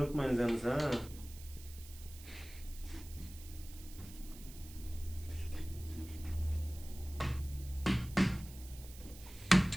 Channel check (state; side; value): noise; right; hiss, 17 dB below the sound